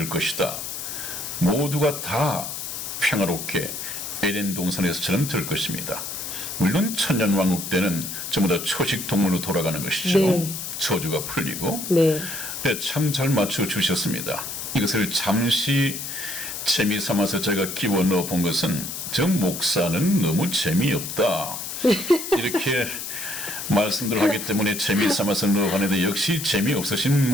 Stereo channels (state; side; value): noise; left; hiss, 6 dB below the sound